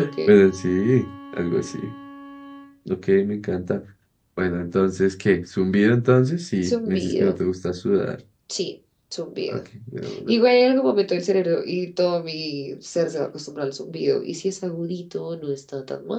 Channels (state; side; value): identical; both; correlation 1.00